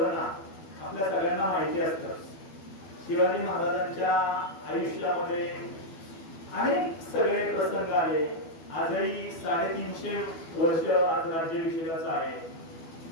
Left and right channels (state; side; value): late; right; 12 ms